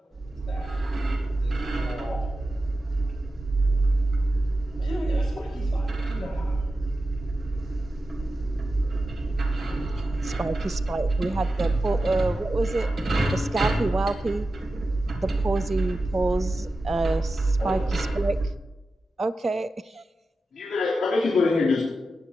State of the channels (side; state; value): both; normal; correlation 0.92